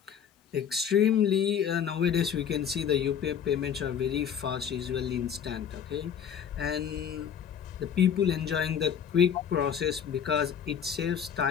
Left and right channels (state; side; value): quieter; right; 8.2 dB